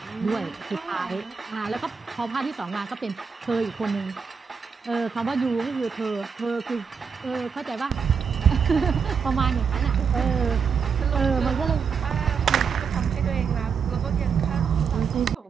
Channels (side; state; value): left; quieter; 6.1 dB